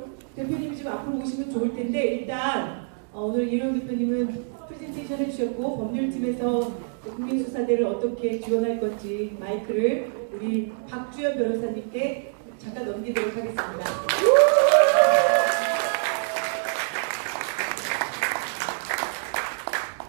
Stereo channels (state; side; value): silent; left; digital silence